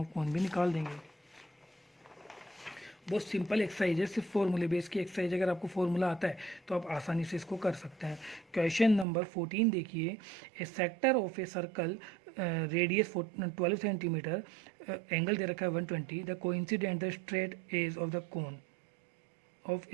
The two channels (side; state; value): left; drops out; at 9.1 s